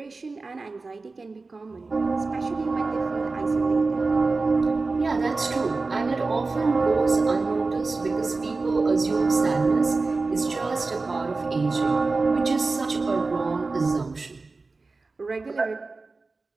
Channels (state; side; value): quieter; left; 3.8 dB